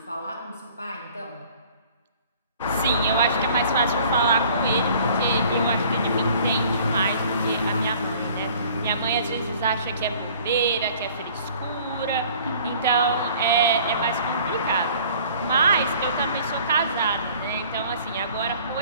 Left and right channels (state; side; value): inverted; both; correlation -0.52